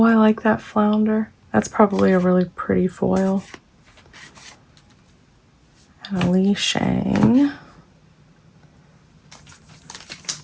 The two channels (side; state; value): both; identical; correlation 1.00